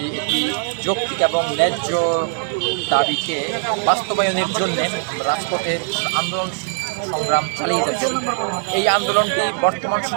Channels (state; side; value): silent; left; 65 dB below the other